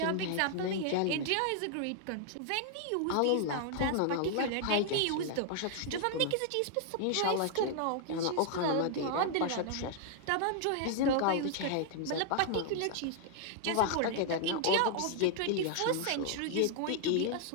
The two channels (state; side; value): different; both; correlation 0.00